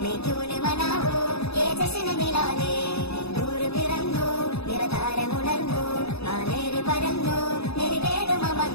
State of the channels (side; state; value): right; late; 0.79 ms